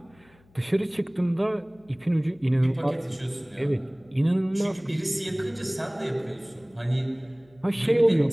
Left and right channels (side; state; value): left; noise; hum, 30 dB below the sound